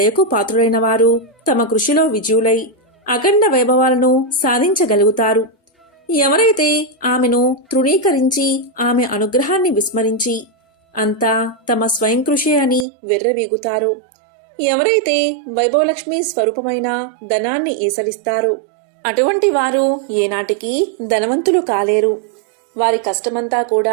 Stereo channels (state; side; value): drops out; left; at 12.9 s